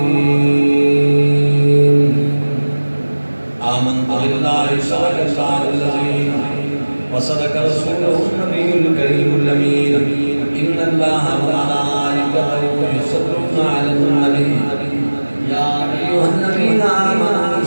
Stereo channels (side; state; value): both; inverted; correlation -1.00